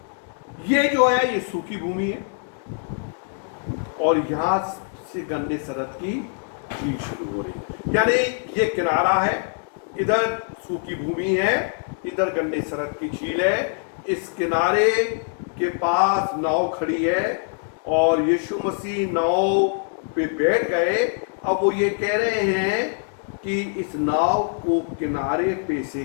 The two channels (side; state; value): right; silent; 60 dB below the other